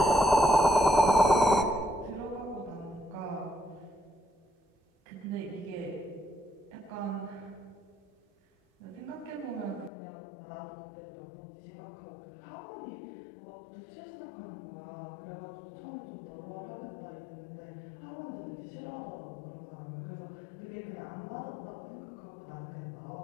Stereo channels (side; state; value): right; drops out; at 9.9 s